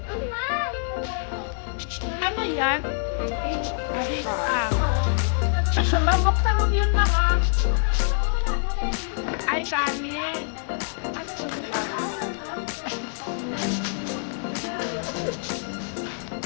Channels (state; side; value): silent; right; digital silence